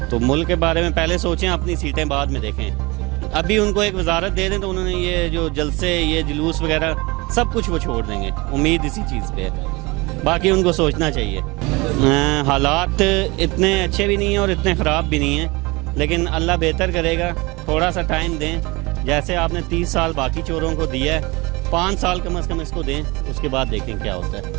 तो मुल्क के बारे में पहले सोचें, अपनी सीटें बाद में देखें। अभी उनको एक वजारत दे दें तो उन्होंने ये जो जलसे ये जुलूस वगैरह सब कुछ वो छोड़ देंगे, उम्मीद इसी चीज़ पे है। बाकी उनको सोचना चाहिए। हालात इतने अच्छे भी नहीं हैं और इतने ख़राब भी नहीं हैं, लेकिन अल्लाह बेहतर करेगा, थोड़ा सा टाइम दें। जैसे आपने 30 साल बाकी चोरों को दिया है, 5 साल कम से कम इसको दें, उसके बाद देखें क्या होता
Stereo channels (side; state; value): left; quieter; 24.6 dB